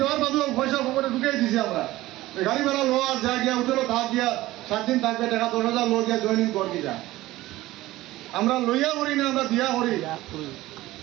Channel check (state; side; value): quieter; left; 17.1 dB